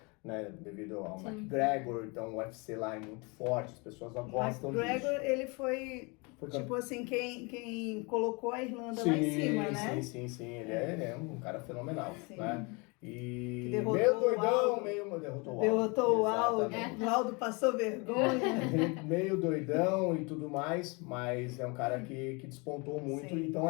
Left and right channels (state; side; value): quieter; right; 29.5 dB